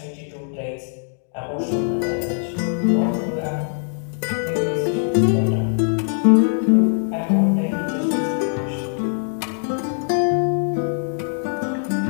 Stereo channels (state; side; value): silent; right; digital silence